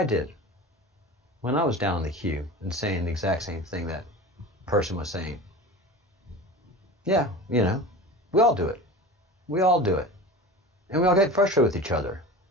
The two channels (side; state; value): both; normal; correlation 0.33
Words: did when I was down in the queue and saying the exact same thing that person was saying. Yeah, you know, we all do it. We all do it. And we all get frustrated with each other.